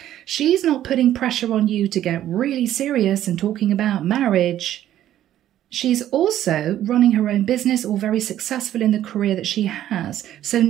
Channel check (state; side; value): quieter; left; 12.2 dB